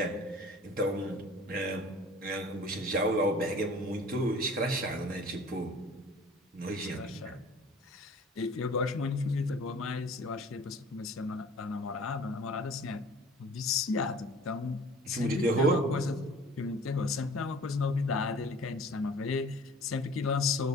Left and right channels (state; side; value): normal; both; correlation 0.47